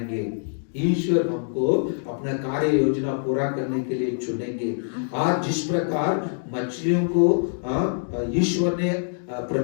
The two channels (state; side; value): silent; right; digital silence